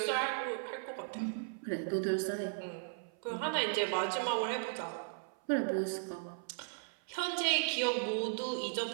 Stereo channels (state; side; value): silent; left; 53 dB below the other